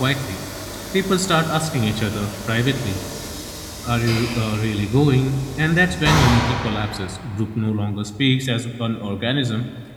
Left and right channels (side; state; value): both; identical; correlation 1.00